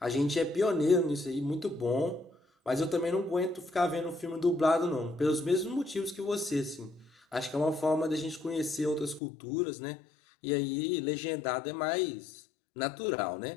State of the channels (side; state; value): right; drops out; at 9.2 s